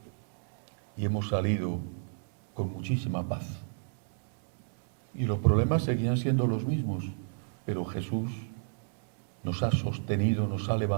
y hemos salido con muchísima paz? Y los problemas seguían siendo los mismos, pero Jesús nos ha sostenido, nos ha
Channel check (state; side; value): silent; left; digital silence